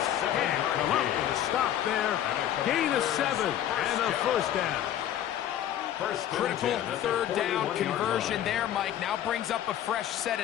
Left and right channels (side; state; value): right; quieter; 11.3 dB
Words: can't come up with a stop there. Gain of 7 and a 1st down. Critical 3rd down conversion there, Mike. Now brings up a fresh set